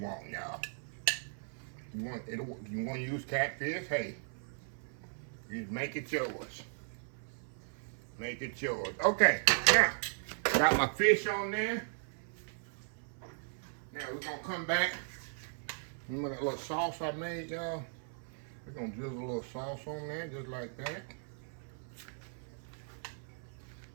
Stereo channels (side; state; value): left; silent; 53 dB below the other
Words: y'all. You want to use catfish? Hey, you make it yours. Make it yours. Okay, now got my fish on there. Now we're gonna come back. Remember that little sauce I made, y'all? We're gonna drizzle a little sauce on there, just like that.